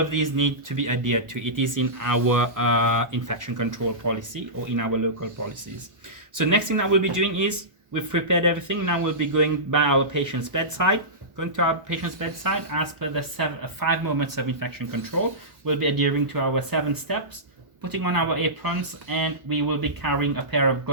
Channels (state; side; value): late; left; 1.1 ms